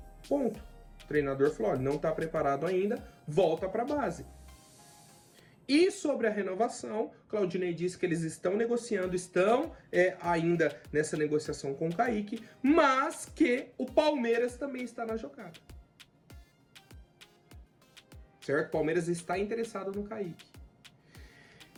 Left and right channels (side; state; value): both; identical; correlation 1.00